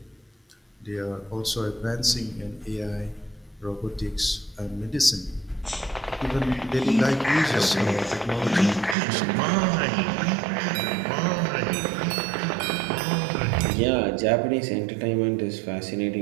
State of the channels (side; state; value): left; drops out; at 9.0 s